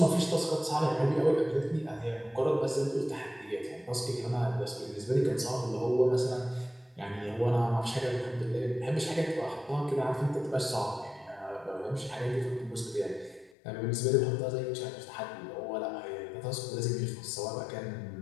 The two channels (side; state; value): right; drops out; at 13.5 s